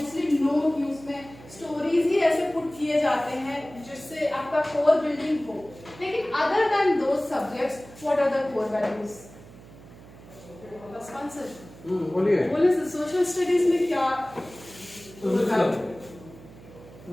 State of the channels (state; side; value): noise; right; hum, 20 dB below the sound